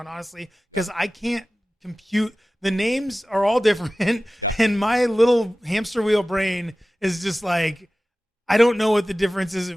honestly, because I can't compute. The names are all different, and my little hamster wheel brain is just like, I don't know what the difference is.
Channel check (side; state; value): both; normal; correlation 0.96